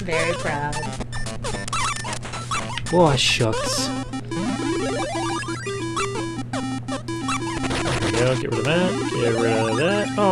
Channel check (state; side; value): identical; both; correlation 1.00